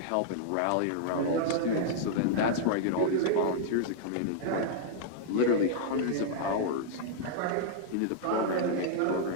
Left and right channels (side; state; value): both; different; correlation -0.02